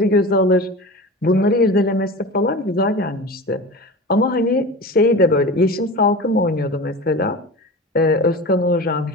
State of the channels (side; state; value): both; normal; correlation 0.32